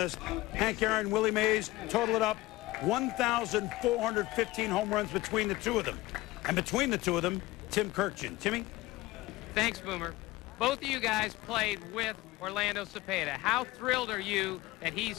Hank Aaron, Willie Mays, total it up, 1,415 home runs between the two of them. And between the two of them, Tim Kirkjian. Timmy? Thanks, Boomer. Both of you guys played with Orlando Cepeda. How thrilled are you that he's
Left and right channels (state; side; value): quieter; right; 18.7 dB